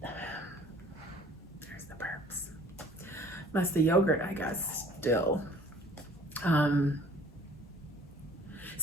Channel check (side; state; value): both; normal; correlation 0.53